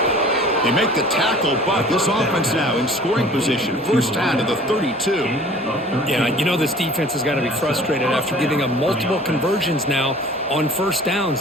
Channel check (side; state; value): both; normal; correlation 0.48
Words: They make the tackle, but this offense now in scoring position. First down to the 32. Yeah, you know this defense has got to be frustrated after giving up multiple conversions now on first